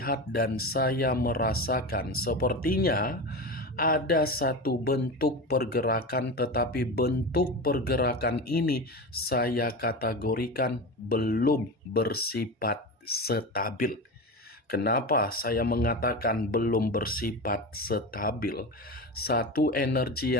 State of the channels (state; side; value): normal; both; correlation 0.24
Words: dan saya merasakan sepertinya ada satu bentuk pergerakan, tetapi bentuk pergerakan ini saya kategorikan belum bersifat stabil. Kenapa saya mengatakan belum bersifat stabil? Satu energi